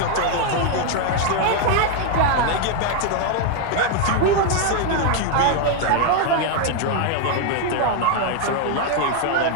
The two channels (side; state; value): both; different; correlation 0.00